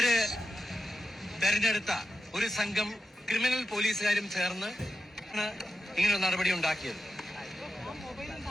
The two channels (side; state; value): both; normal; correlation 0.89